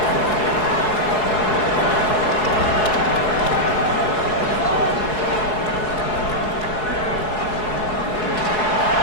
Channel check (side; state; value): right; late; 4.7 ms